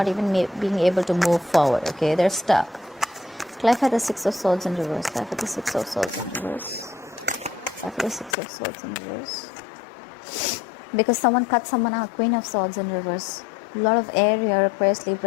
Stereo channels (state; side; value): drops out; right; at 8.3 s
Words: even being able to move forward, okay? They're stuck. Clarify the Six of Swords in reverse. Clarify the Six of Swords in reverse. Clarify the Six of Swords in reverse. Because someone cut someone out. Queen of Swords in reverse. A lot of air here. Aquarius,